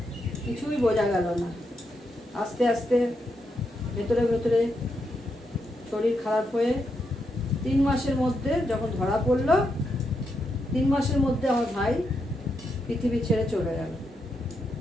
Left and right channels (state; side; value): normal; both; correlation 0.82